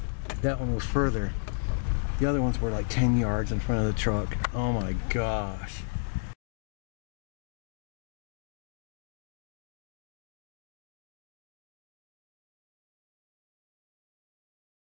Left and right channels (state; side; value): silent; right; digital silence